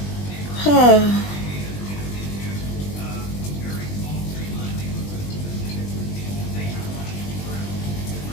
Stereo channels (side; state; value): right; late; 20 ms